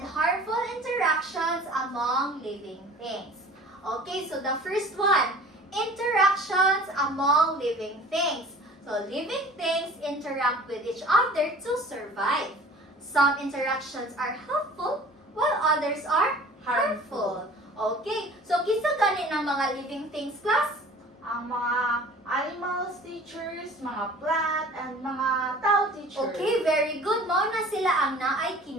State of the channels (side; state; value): both; normal; correlation 0.45